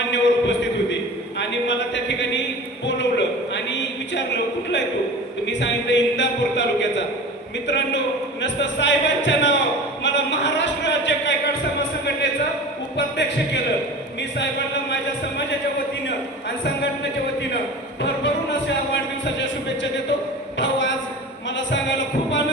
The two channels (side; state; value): both; normal; correlation 0.35